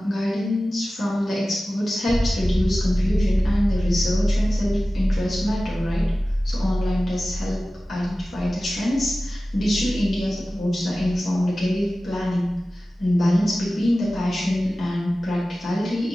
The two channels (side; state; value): both; normal; correlation 0.96